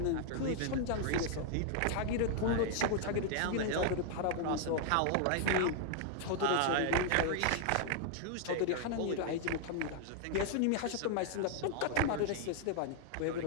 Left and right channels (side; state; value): both; different; correlation 0.00